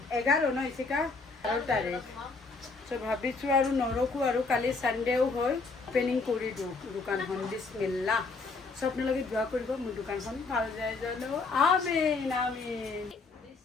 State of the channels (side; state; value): right; quieter; 4.0 dB